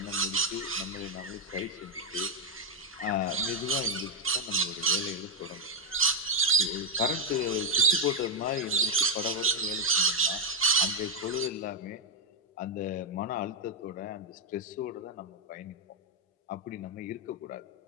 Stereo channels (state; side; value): normal; both; correlation -0.02